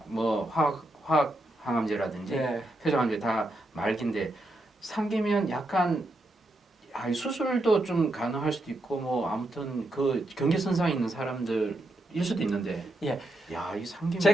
뭐 화학 항암제라든지 예. 회전항암제 다 말기인데 상기면 약간 수술도 좀 가능할 수도 있고 뭐 아무튼 그 경계선상에 있는 사람들일 수도 있는데 예. 야, 이 상기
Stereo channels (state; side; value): normal; both; correlation 0.83